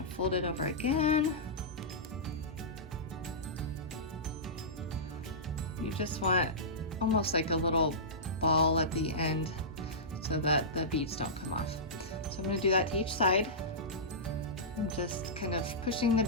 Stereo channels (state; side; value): normal; both; correlation -0.17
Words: to fold it over again. You just want almost like a little ball at the end so that the beads don't come off. So I'm going to do that to each side. I'm just kind of pushing the